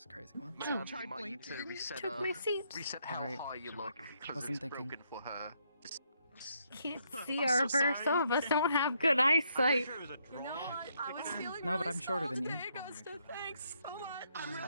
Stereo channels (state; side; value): inverted; both; correlation -0.74